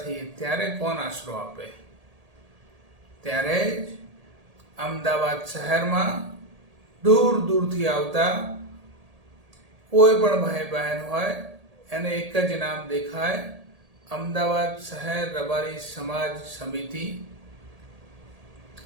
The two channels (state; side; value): late; left; 1.8 ms